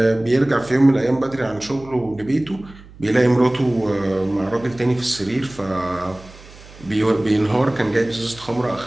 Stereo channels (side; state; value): right; noise; hum, 21 dB below the sound